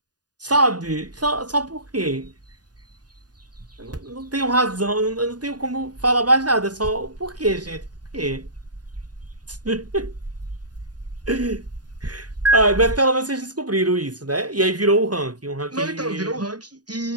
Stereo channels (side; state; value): left; late; 0.69 ms